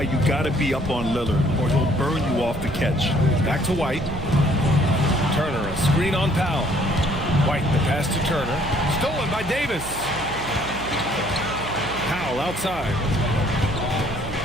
you got to be up on Lillard, or he'll burn you off the catch. Back to White. Turner, a screen on Powell. White, the pass to Turner. Stolen by Davis. Powell outside.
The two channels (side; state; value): right; noise; hum, 13 dB below the sound